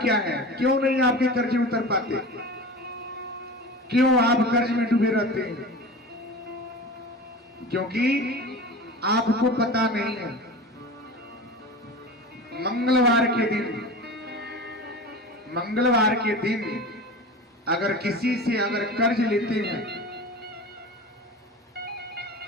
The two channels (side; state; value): both; normal; correlation 0.32